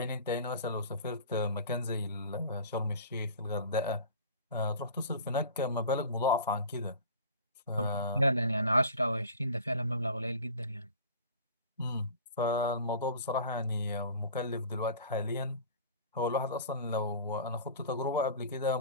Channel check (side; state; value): both; inverted; correlation -0.41